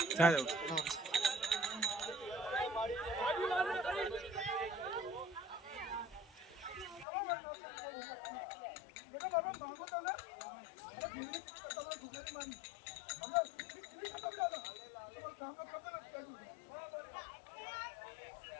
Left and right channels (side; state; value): right; drops out; at 7.1 s